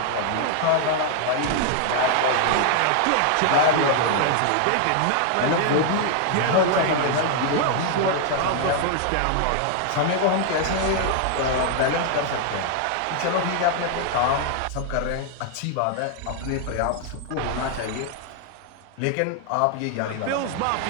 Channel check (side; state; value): both; different; correlation 0.00